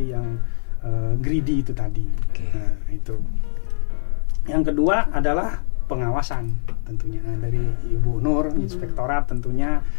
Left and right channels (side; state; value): right; silent; digital silence